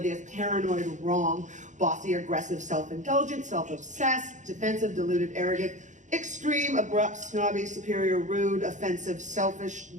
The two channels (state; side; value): late; left; 0.35 ms